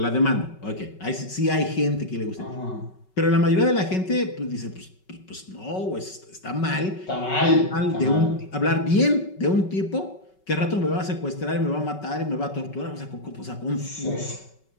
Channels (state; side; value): late; right; 5.3 ms